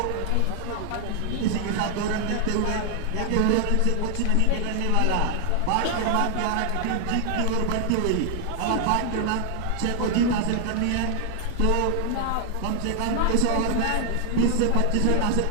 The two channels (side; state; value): both; different; correlation 0.00